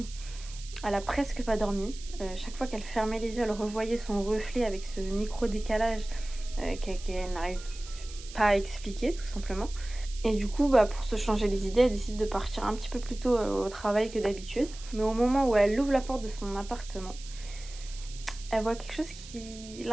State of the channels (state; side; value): noise; right; hiss, 16 dB below the sound